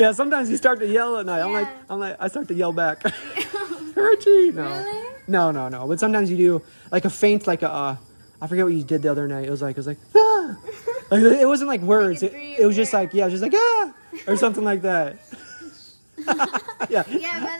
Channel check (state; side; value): inverted; both; correlation -1.00